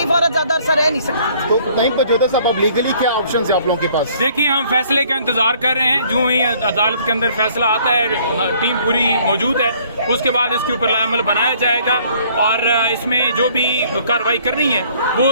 औरत ज्यादा अरसा रह नहीं सकती। तो नहीं पहुंचा साहब, अब लीगली क्या ऑप्शन है आप लोगों के पास? देखिए, हम फैसले का इंतजार कर रहे हैं। जो ही अदालत के अंदर फैसला आता है, टीम पूरी मौजूद है, उसके बाद इसके ऊपर अमल बनाया जाएगा और इसमें जो भी कार्रवाई करनी है वो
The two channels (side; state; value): both; inverted; correlation -0.59